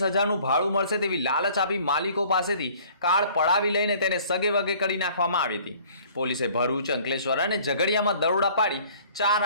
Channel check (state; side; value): inverted; both; correlation -0.53